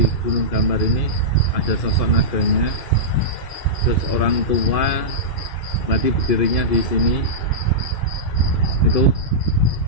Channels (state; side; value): late; right; 2.5 ms